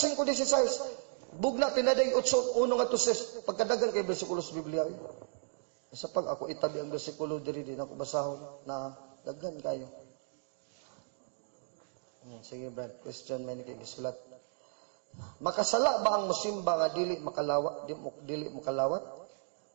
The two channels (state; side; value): silent; left; digital silence